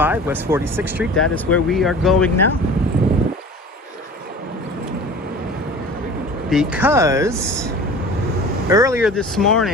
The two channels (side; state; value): both; normal; correlation 0.40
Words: West 46th Street. That is where we are going now. Because earlier this